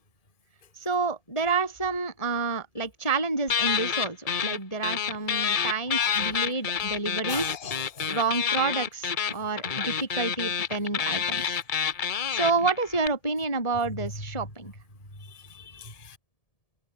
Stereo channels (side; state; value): right; late; 1.7 ms